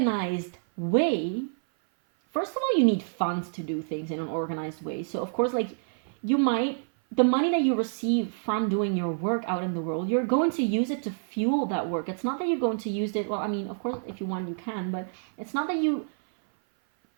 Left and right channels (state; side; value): silent; left; 56 dB below the other